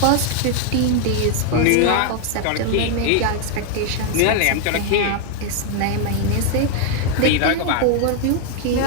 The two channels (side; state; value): both; different; correlation 0.00